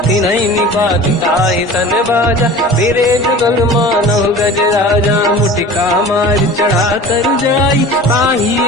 तिनहि निपात ताहि सन बाजा फिरे जुगल मानव गज राजा मुटिका मार चढ़ा तर जाई पाही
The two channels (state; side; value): normal; both; correlation 0.39